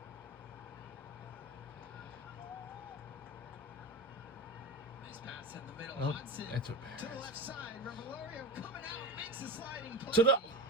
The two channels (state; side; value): normal; both; correlation 0.25